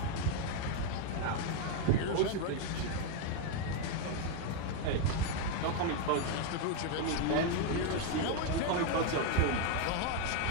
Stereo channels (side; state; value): both; different; correlation 0.01